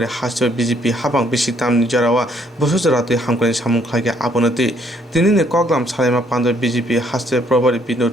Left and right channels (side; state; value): both; normal; correlation 0.67